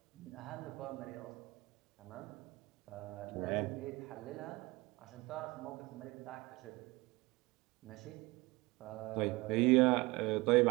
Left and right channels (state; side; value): quieter; left; 22.2 dB